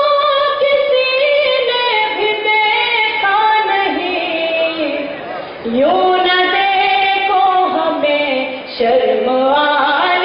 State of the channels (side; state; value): both; identical; correlation 1.00